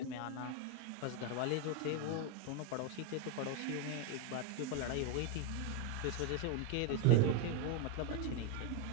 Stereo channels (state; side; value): different; both; correlation 0.01